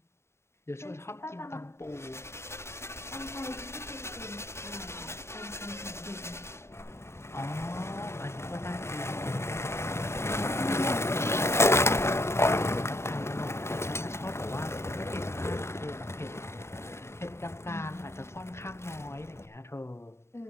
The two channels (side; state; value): right; late; 0.13 ms